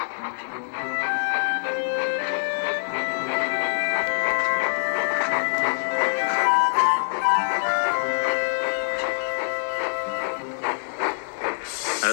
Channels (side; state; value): right; silent; digital silence